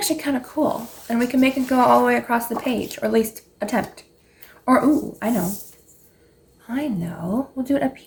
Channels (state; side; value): identical; both; correlation 1.00